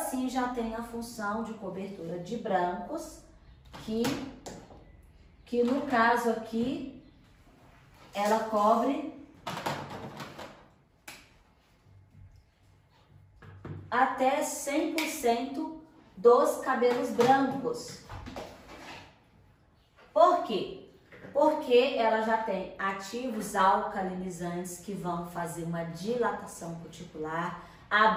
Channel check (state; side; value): identical; both; correlation 1.00